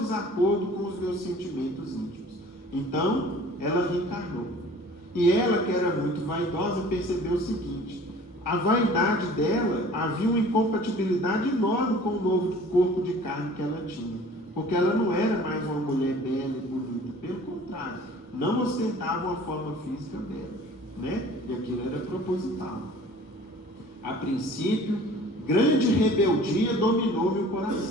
com os meus sentimentos íntimos. Então, ela reencarnou. E ela, que era muito vaidosa, percebeu o seguinte: a vaidade dela havia uma incompatibilidade enorme com o novo corpo de carne que ela tinha, porque ela não era mais uma mulher bela e bonita, pelo contrário, não ostentava uma forma física bela, né? E aquilo era proposital. A princípio, grande rebeldia dominou meu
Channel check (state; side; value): normal; both; correlation 0.47